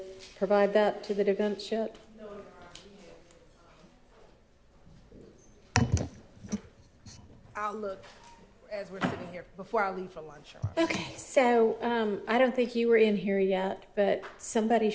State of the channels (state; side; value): identical; both; correlation 1.00